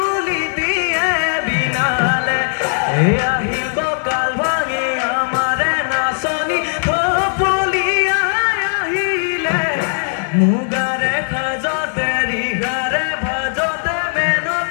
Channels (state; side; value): silent; right; 68 dB below the other